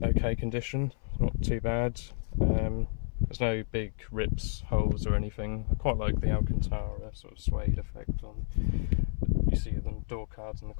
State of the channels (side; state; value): right; silent; 57 dB below the other